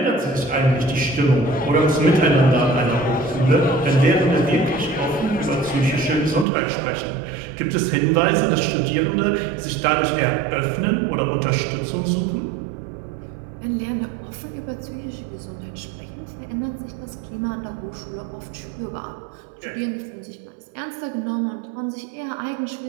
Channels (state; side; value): drops out; left; at 6.5 s